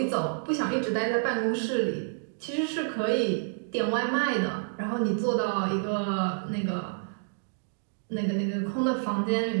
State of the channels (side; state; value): left; silent; digital silence